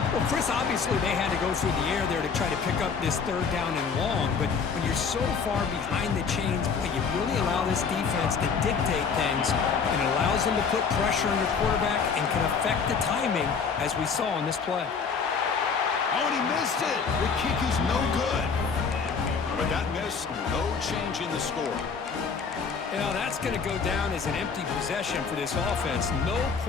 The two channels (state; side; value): quieter; right; 5.7 dB